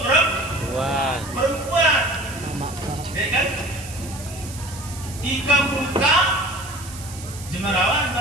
perempuan. Ya kan? Ika muka jemarawan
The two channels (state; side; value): noise; right; hiss, 14 dB below the sound